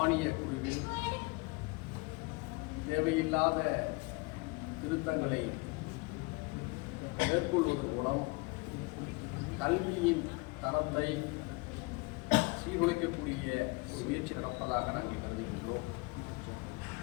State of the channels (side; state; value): right; quieter; 26.4 dB